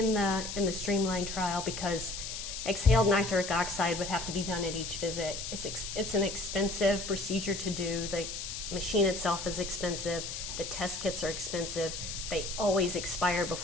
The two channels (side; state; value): left; noise; hiss, 6 dB below the sound